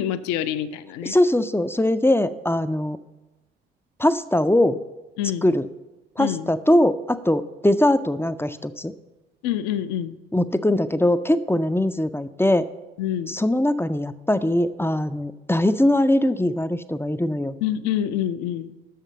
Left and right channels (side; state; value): both; normal; correlation 0.85